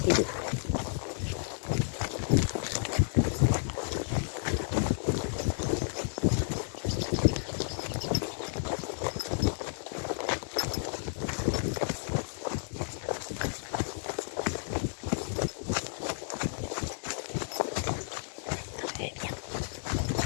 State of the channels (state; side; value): silent; right; digital silence